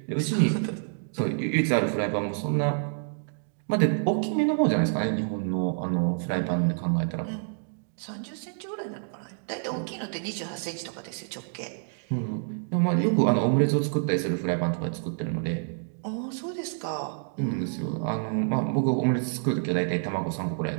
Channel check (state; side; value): silent; left; digital silence